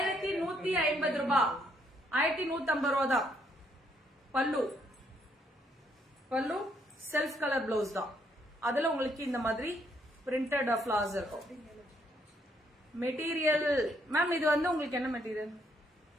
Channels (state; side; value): normal; both; correlation 0.72